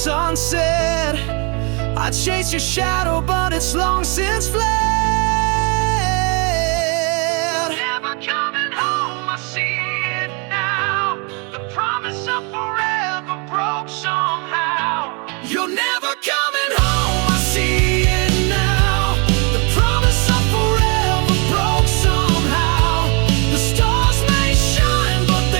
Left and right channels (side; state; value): left; quieter; 33.1 dB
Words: unsaid. I chase your shadow, but it's long since fled. Never coming home, I see it now. The promise of forever broke somehow. You're never coming home, I see it now. The promise of forever broke somehow. The stars may shine, but